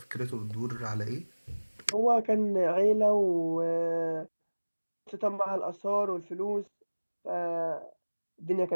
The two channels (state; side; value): inverted; both; correlation -1.00